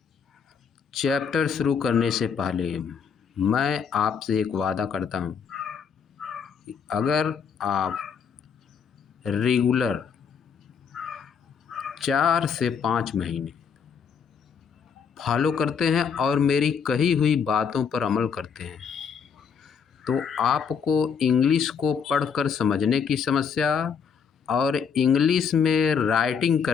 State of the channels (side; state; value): right; quieter; 6.6 dB